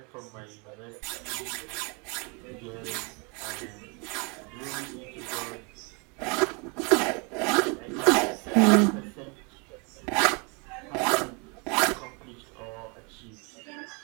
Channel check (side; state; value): left; quieter; 32.1 dB